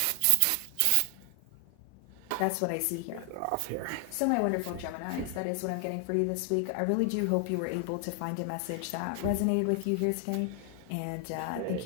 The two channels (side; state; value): both; different; correlation 0.00